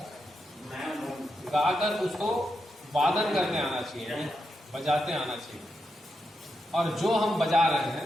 गाकर उसको वादन करने आना चाहिए, बजाते आना चाहिए, और जो हम बजा रहे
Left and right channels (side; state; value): both; normal; correlation 0.85